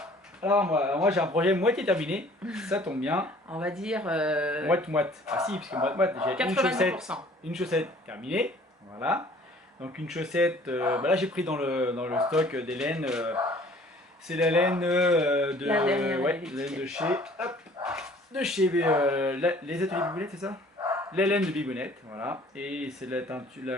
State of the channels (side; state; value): both; normal; correlation 0.53